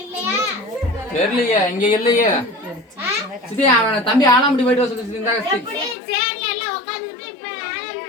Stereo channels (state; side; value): drops out; right; at 6.0 s